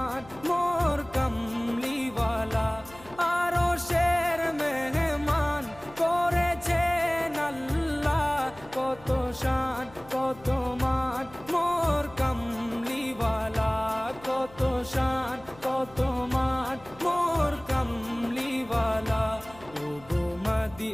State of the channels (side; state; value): left; noise; hum, 22 dB below the sound